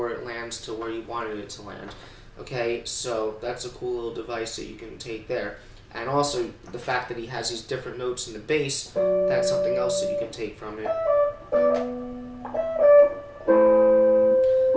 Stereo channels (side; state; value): both; identical; correlation 1.00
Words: it lands to where you wanted it to land. Okay, so that's a cool little device that you can take there. And also, the fact that he has these different notes in the bass, that's something else that you can take from it.